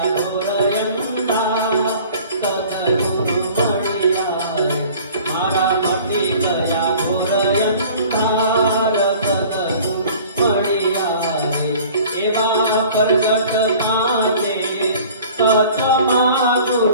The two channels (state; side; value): inverted; both; correlation -0.48